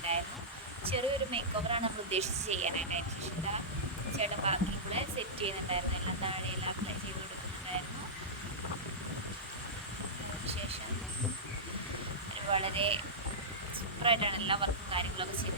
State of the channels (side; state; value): both; normal; correlation -0.14